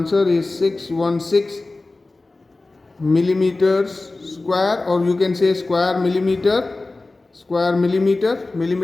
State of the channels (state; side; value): quieter; right; 3.2 dB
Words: is 616 millimeters square, or you can say square millimeter,